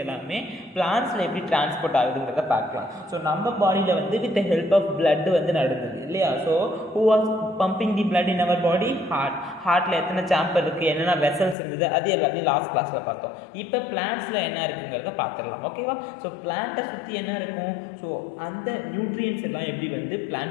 எல்லாமே பிளான்ஸில் எப்படி டிரான்ஸ்போர்ட் ஆகுதுங்கிறத பார்க்கலாம். ஸோ நம்ம பாடியில் வந்து with the help of blood வந்து நடந்தது இல்லையா? So who was pumping the blood in our body? ஹார்ட்டில் எத்தனை சாம்பர் இருக்குது, என்னென்ன வெசல்ஸ் இருந்தது, அது எல்லாத்தையும் லாஸ்ட் கிளாஸில் பார்த்தோம். இப்போ பிளான்ஸில் என்ன இருக்குங்கிறத பார்த்துடலாம். ஓகேவா? ஸோ பிளான்ட்டை சுற்றி என்ன இருக்கும்? ஸோ அந்த நியூட்ரியன்ஸ் எல்லாம் எப்படி வந்து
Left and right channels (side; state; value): right; drops out; at 11.6 s